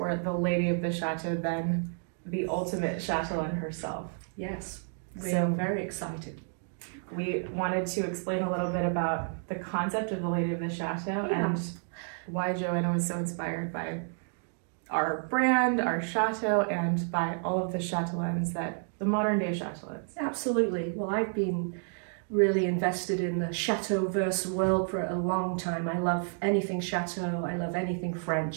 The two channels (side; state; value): left; silent; 57 dB below the other